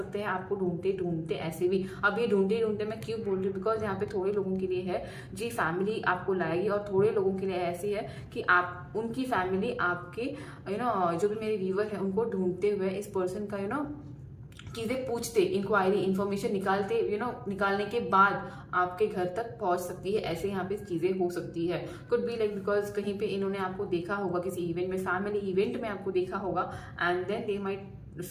हैं आपको ढूंढते ढूंढते। ऐसे भी अब ये ढूंढते मैं क्यों बोल रही हूँ, बिकॉज यहाँ पे थोड़े लोगों के लिए है जी फैमिली आपको लाएगी, और थोड़े लोगों के लिए ऐसी है कि आप उनकी फैमिली आपके जो भी मेरे व्यूवर है उनको ढूंढते हुए इस पर्सन का चीज़ें पूछते, इंक्वायरी, इन्फॉर्मेशन निकालने के बाद आपके घर तक पहुंच सकती है। ऐसे यहाँ पे चीज़ें हो सकती है। कुड बी लाइक बिकॉज कहीं पे इन्होंने आपको देखा होगा किसी इवेंट में, फैमिली इवेंट में आपको देखा होगा, and then they might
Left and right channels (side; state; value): both; identical; correlation 1.00